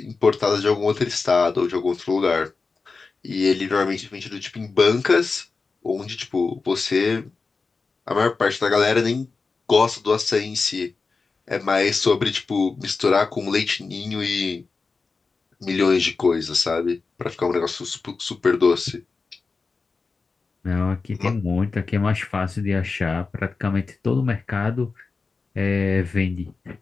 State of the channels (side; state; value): right; quieter; 4.3 dB